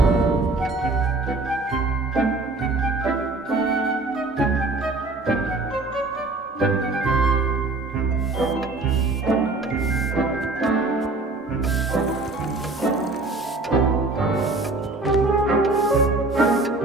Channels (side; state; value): left; quieter; 3.2 dB